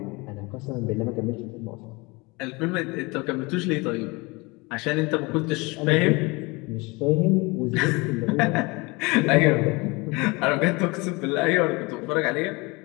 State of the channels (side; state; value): right; quieter; 25.7 dB